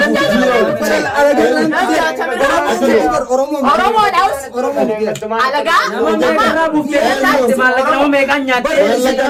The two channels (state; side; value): identical; both; correlation 1.00